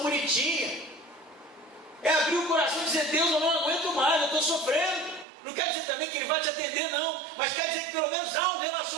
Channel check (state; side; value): drops out; left; at 5.2 s